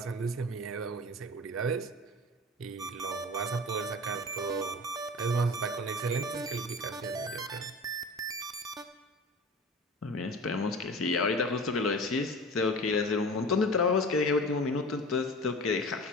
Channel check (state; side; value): normal; both; correlation 0.36